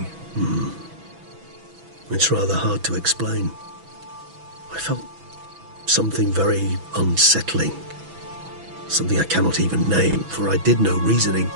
It's rather hard to explain. I felt something very unsettling. Something I cannot even name, for I did no reasoning.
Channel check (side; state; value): left; late; 6.1 ms